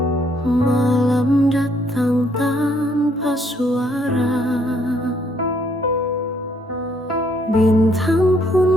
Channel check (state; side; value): normal; both; correlation 0.68